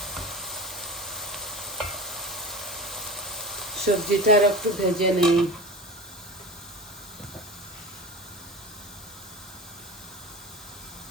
সবজিটা আর একটু ভেজে নেই।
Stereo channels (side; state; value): both; normal; correlation 0.32